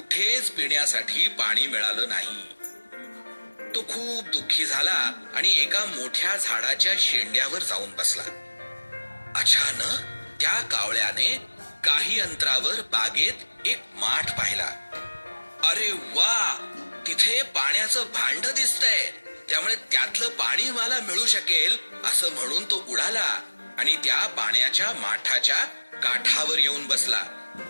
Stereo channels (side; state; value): both; inverted; correlation -1.00